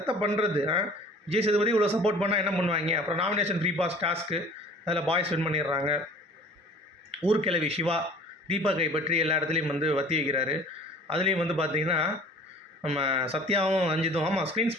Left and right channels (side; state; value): both; normal; correlation 0.47